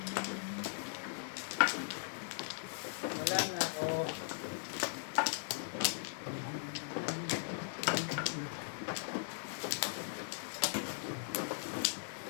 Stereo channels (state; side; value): silent; right; 52 dB below the other